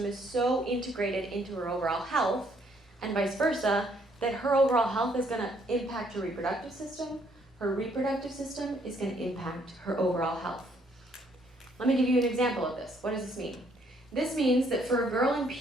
is so integrated into her overall health, and vice versa, that her overall health is going to impact her reproductive system. Her reproductive system is going to impact her overall health. Let me give you an example of this. What does this mean? This means that for a girl in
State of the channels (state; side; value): normal; both; correlation 0.67